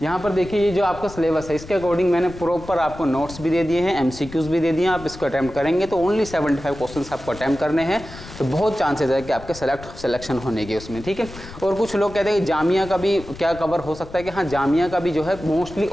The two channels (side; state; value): left; noise; rumble, 15 dB below the sound